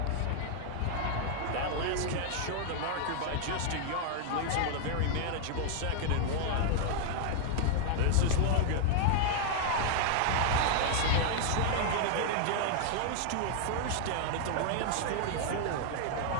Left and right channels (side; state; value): both; different; correlation -0.01